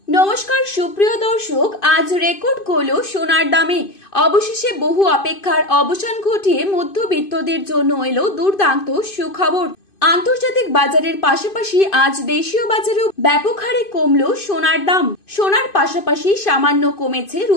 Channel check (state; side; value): late; right; 2.5 ms